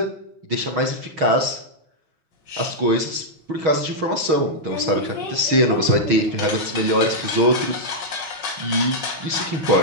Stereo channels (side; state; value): left; late; 6.3 ms